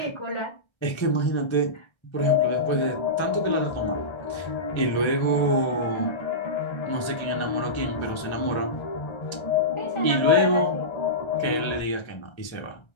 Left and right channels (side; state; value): right; late; 1.3 ms